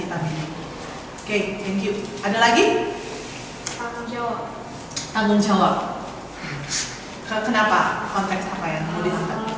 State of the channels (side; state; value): both; identical; correlation 1.00